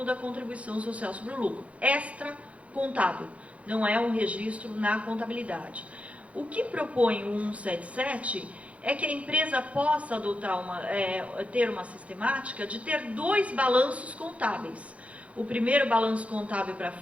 da contribuição social sobre o lucro. Extra contábil, não é um registro na contabilidade. O que propõe o 177 é que a empresa possa ter uma sistemática de ter 2 balanços contábeis. O primeiro balanço contábil para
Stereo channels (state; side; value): late; left; 0.064 ms